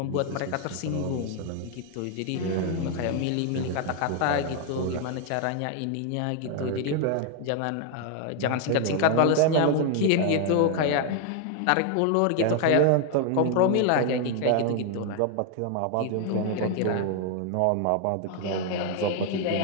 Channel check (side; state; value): both; different; correlation 0.01